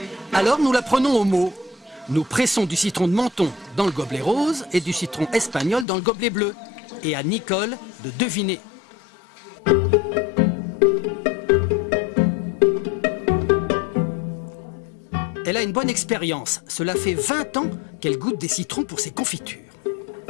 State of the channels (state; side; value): drops out; right; at 5.9 s